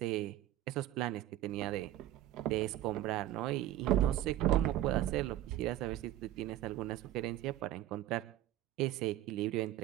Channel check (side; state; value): left; quieter; 13.6 dB